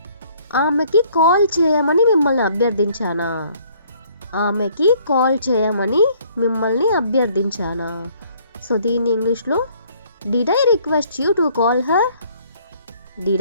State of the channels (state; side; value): inverted; both; correlation -0.60